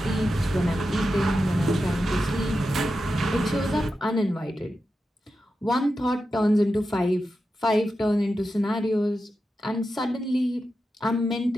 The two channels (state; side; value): normal; both; correlation 0.90